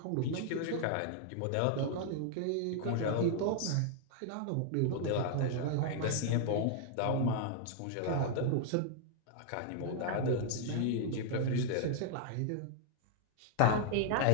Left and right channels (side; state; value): both; different; correlation 0.00